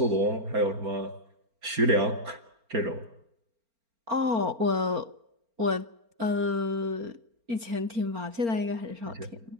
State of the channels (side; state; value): left; late; 4.4 ms